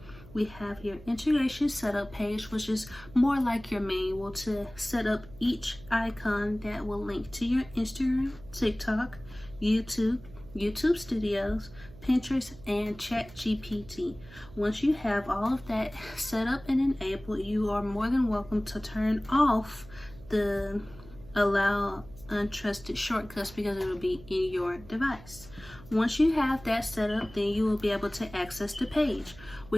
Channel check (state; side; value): noise; right; hum, 19 dB below the sound